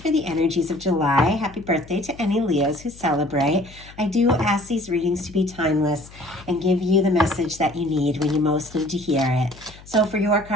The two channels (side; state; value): left; noise; hum, 21 dB below the sound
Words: for the energies of July. Happy birthday to any Leos who celebrate. I do ask these readings to be timeless and give you the message that you need when you most need to hear it. So for your